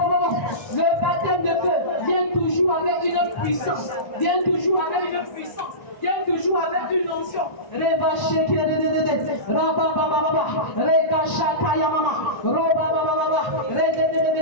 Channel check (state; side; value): late; right; 1.0 ms